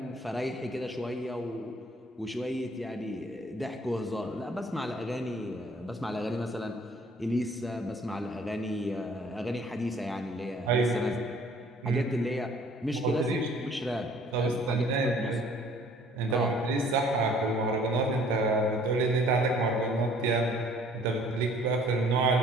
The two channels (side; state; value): both; normal; correlation 0.56